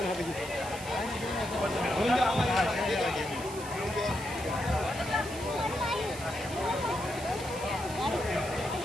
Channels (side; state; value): right; noise; hiss, 13 dB below the sound